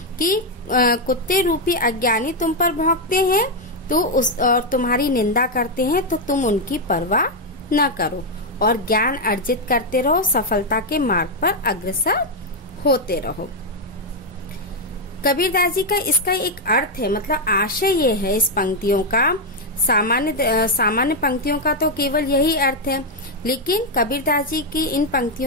कि कुत्ते रूपी अज्ञानी तुम पर भौंकते हैं तो और तुम्हारी निंदा करते हैं, तो तुम उनकी परवाह न करो और ज्ञान अर्जित करते रहो, सफलता के मार्ग पर अग्रसर होते रहो। कबीरदास जी का इसका एक अर्थ है, मतलब आशय ये है इस पंक्तियों का। सामान्य पंक्तियों का तो केवल यही अर्थ है, लेकिन कबीरदास जी की इन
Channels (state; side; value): normal; both; correlation 0.01